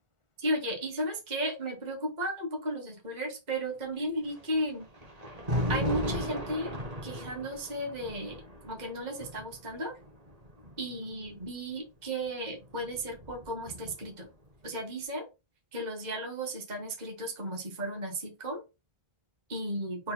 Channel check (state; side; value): late; left; 2.0 ms